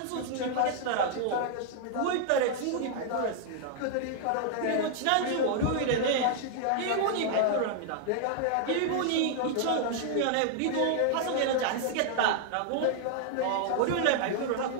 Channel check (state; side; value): different; both; correlation -0.01